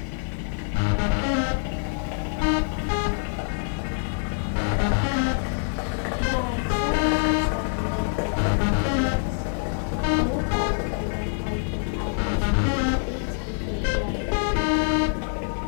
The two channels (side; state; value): right; silent; digital silence